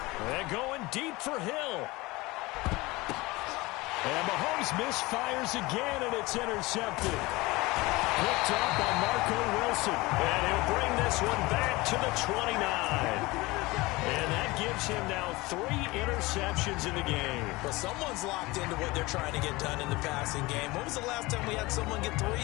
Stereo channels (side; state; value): right; quieter; 21.9 dB